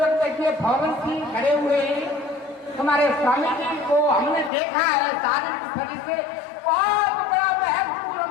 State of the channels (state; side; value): drops out; right; at 4.5 s